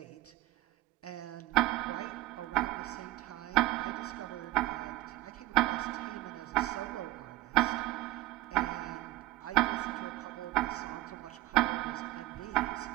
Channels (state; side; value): quieter; left; 17.7 dB